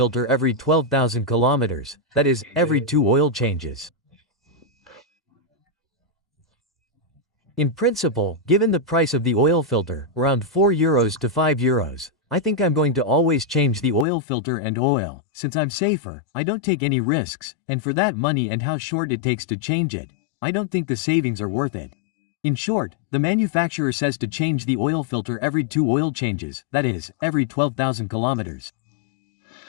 every 12,000 kilometers, that is, every 2 oil changes. In principle, given the price of the oil filter, around €4 to €5, I think I'm going to always change the oil filter and oil, since I'm safer, I don't take any risks, and for that money and how short it takes to change it, I don't think the savings are worth it. In short, the manufacturer says to change the oil filter every 2 oil changes, that is, every 12,000 kilometers.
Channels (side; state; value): right; drops out; at 14.1 s